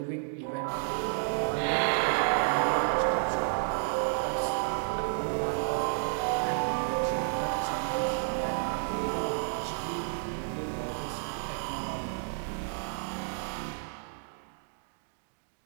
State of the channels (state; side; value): silent; left; digital silence